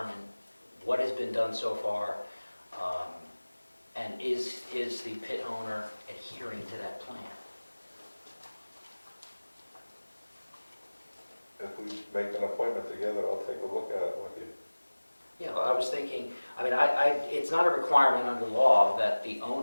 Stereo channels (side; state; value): both; inverted; correlation -1.00